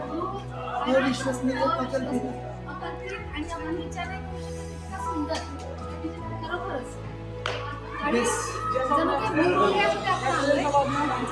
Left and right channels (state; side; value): identical; both; correlation 1.00